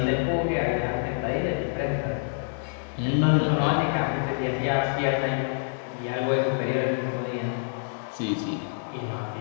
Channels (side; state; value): right; silent; digital silence